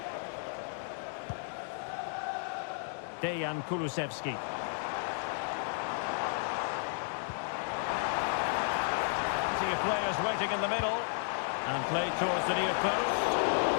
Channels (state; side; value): silent; right; digital silence